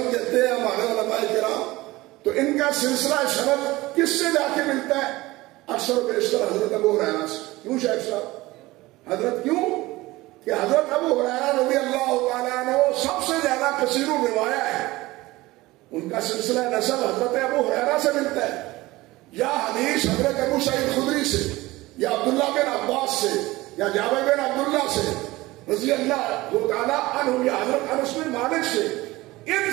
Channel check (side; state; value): left; quieter; 19.5 dB